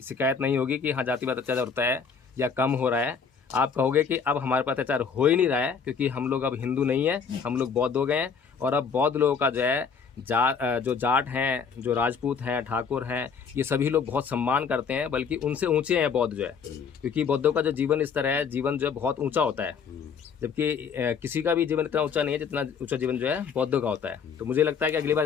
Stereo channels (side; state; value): right; quieter; 6.1 dB